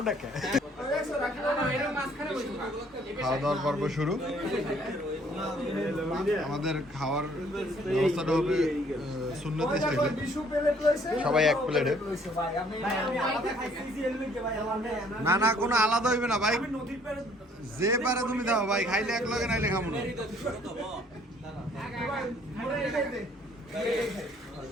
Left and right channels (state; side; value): normal; both; correlation 0.61